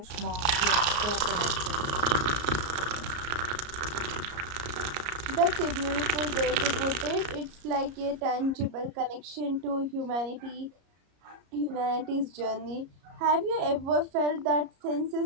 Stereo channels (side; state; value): left; late; 33 ms